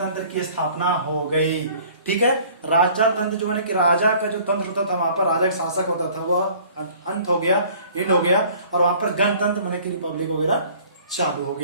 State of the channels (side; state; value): both; inverted; correlation -0.52